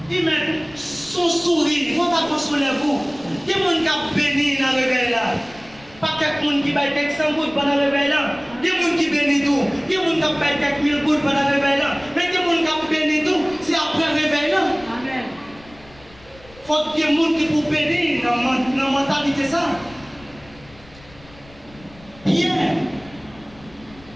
Il met son sourire, il faut pas consoler vous. Il y a des gens qui ont béni dans le réveil là. Pas quelqu'un qui baille quelques 100 gouttes pendant le réveil là. Il y a des gens qui bénissent tout. Il y a des gens qui baille quelques 1000 gouttes pendant le réveil là. Mais il y a des gens qui bénissent tout, c'est après le réveil là. Amen. Il faut qu'il y ait des gens qui pour bénir dans la mentalité ça. Pierre,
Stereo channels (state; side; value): noise; left; rumble, 24 dB below the sound